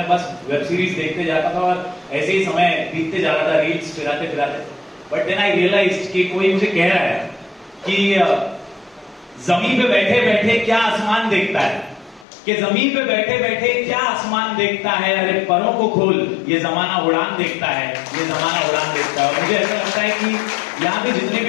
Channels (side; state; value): right; drops out; at 12.2 s